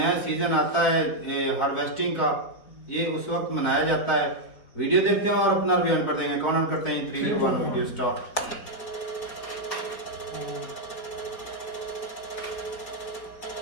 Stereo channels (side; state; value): right; late; 4.7 ms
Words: सीजन आता है हार्वेस्टिंग का, ये उस वक्त मनाया जाता है। वीडियो देखते हैं और अपना रिव्यू पर देंगे। कमेंट करते हैं 3 2 1 वीडियो स्टार्ट।